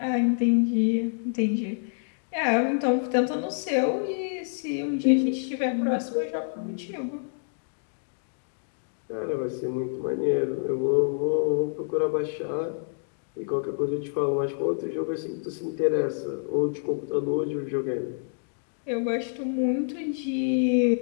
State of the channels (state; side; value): silent; right; digital silence